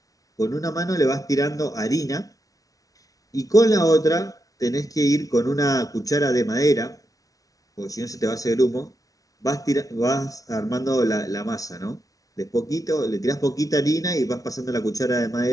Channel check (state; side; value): late; right; 0.17 ms